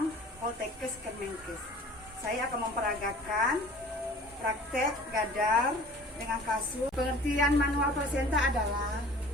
Poltekkes Kemenkes. Saya akan memperagakan praktek gadar dengan kasus. Pengertian manual plasenta adalah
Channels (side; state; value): both; normal; correlation 0.46